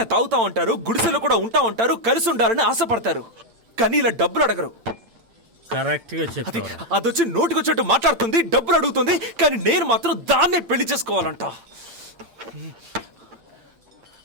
తాగుతా ఉంటారు, గుడిసెలో కూడా ఉంటా ఉంటారు, కలిసి ఉండాలని ఆశపడతారు. కానీ ఇలా డబ్బులు అడగరు. కరెక్ట్ గా చెప్పావు. అదొచ్చి నోటికొచ్చేట్టు మాట్లాడుతుంది, డబ్బులు అడుగుతుంది. కానీ నేను మాత్రం దాన్నే పెళ్లి చేసుకోవాలంట.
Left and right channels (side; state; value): left; late; 8.8 ms